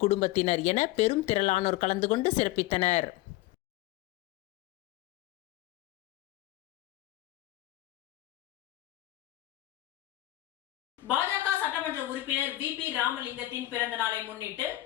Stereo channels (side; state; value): right; quieter; 16.4 dB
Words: குடும்பத்தினர் என பெரும் திரளானோர் கலந்து கொண்டு சிறப்பித்தனர். பாஜக சட்டமன்ற உறுப்பினர் VP ராமலிங்கத்தின் பிறந்த நாளை முன்னிட்டு